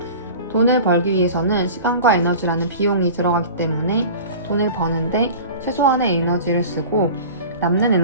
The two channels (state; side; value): inverted; both; correlation -0.38